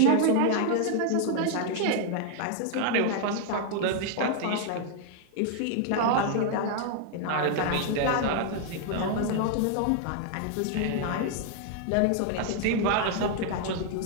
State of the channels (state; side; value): different; both; correlation 0.00